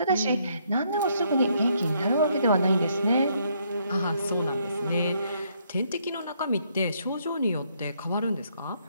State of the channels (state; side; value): inverted; both; correlation -0.71